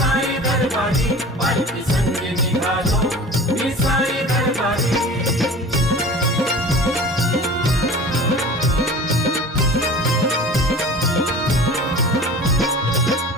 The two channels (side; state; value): both; normal; correlation 0.39